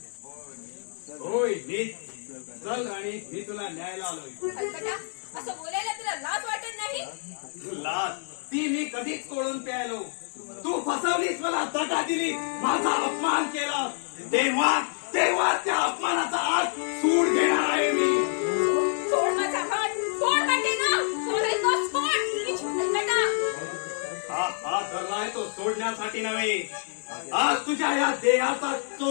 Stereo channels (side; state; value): right; silent; 60 dB below the other